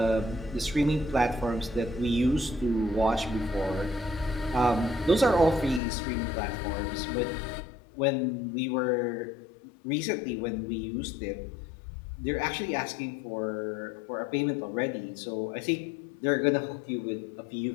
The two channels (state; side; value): drops out; right; at 5.8 s